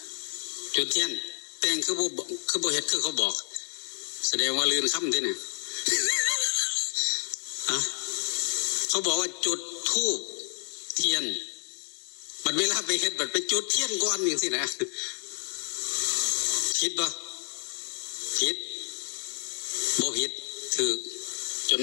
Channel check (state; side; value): silent; right; digital silence